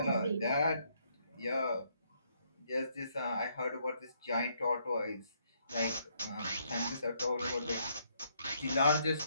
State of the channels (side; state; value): both; inverted; correlation -0.72